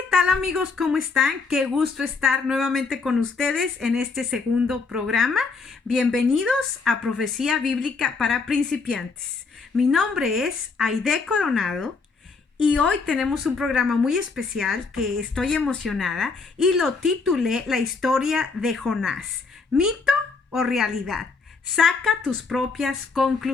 tal, amigos? ¿Cómo están? Qué gusto estar nuevamente con ustedes en este segundo programa. Bienvenidos a Profecía Bíblica para Principiantes. Mi nombre es Aide Coronado y hoy tenemos un programa muy especial que estoy emocionada y lo titulé La historia de Jonás. ¿Mito o realidad? Saca tus propias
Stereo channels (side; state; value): right; quieter; 4.5 dB